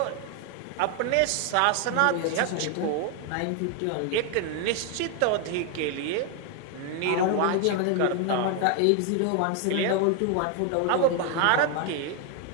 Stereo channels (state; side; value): different; both; correlation 0.01